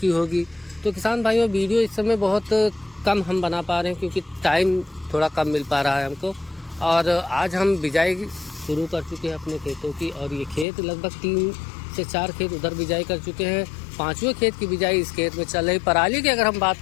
होगी। तो किसान भाइयों, वीडियो इस समय बहुत कम हम बना पा रहे हैं क्योंकि टाइम थोड़ा कम मिल पा रहा है हमको। और आज हम बिजाई शुरू कर चुके हैं अपने खेतों की, और ये खेत लगभग 3 से 4 खेत उधर बिजाई कर चुके हैं। 5वें खेत की बिजाई इस खेत में चल रही। पराली की अगर हम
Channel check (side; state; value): right; drops out; at 10.7 s